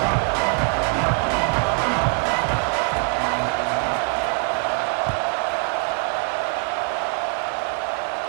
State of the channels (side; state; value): left; quieter; 38.3 dB